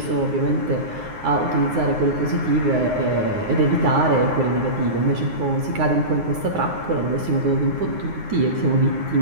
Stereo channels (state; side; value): late; left; 9.6 ms